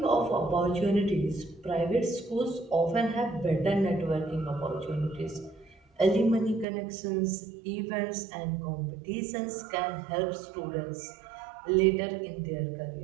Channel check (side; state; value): left; drops out; at 6.7 s